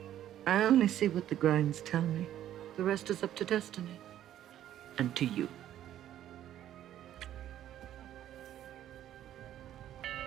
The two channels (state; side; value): quieter; left; 11.8 dB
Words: I only see what the grinds tell me. The rest is up to destiny. And to you.